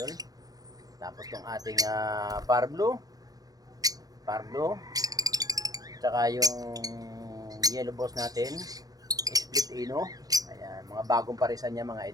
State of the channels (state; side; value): late; left; 0.18 ms